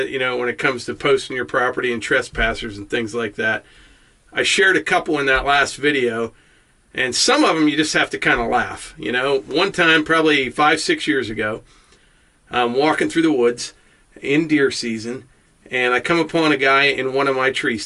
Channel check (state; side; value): identical; both; correlation 1.00